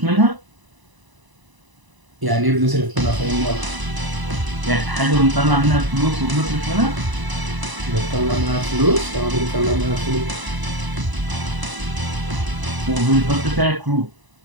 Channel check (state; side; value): late; left; 1.0 ms